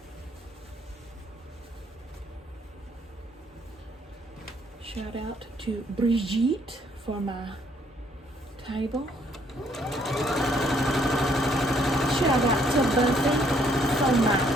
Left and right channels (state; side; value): normal; both; correlation 0.67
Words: Shout out to Brigitte for my table. Shout out to Buffy for my